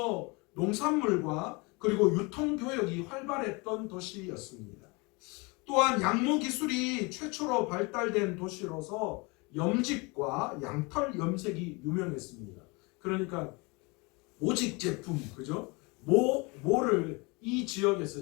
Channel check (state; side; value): quieter; right; 27.9 dB